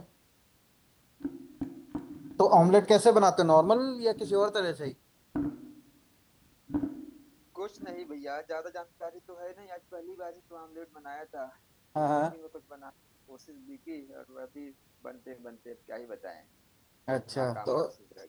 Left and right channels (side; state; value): both; identical; correlation 1.00